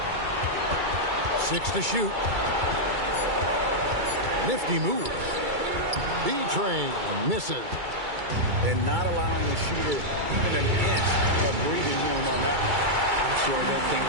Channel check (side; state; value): left; late; 2.3 ms